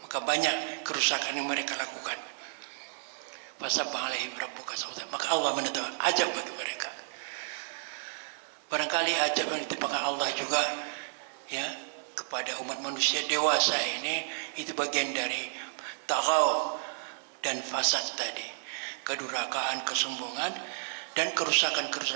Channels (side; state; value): left; silent; digital silence